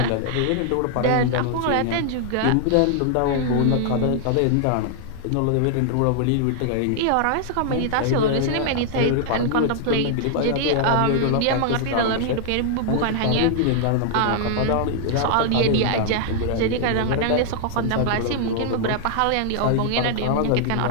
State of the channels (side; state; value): both; different; correlation -0.01